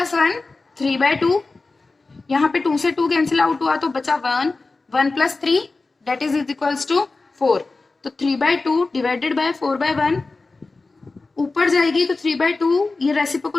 1 3/2। यहाँ पे 2 से 2 कैंसिल आउट हुआ तो बचा 1, 1 plus 3 that is equals to 4। तो 3/2 डिवाइडेड बाय 4/1, ऊपर जाएगी तो 3/2, ये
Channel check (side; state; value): right; quieter; 3.6 dB